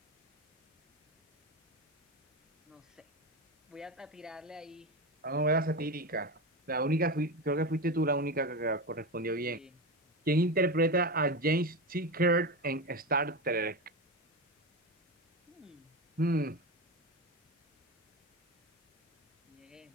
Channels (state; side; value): normal; both; correlation 0.19